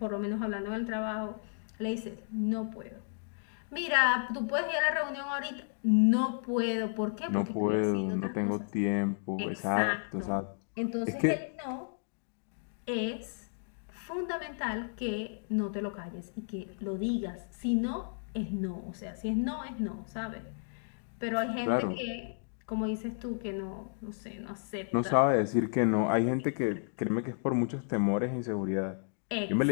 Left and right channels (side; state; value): right; silent; digital silence